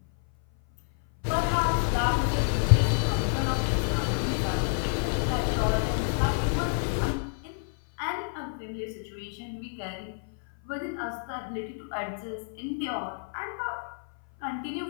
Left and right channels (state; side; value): silent; right; 57 dB below the other